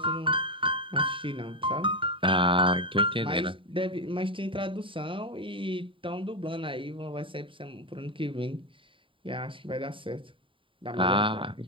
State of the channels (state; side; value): late; left; 0.25 ms